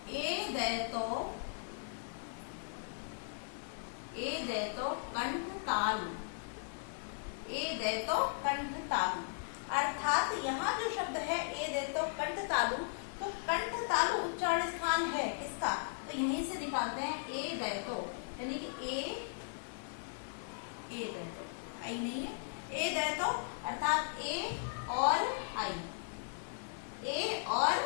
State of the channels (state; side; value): silent; right; digital silence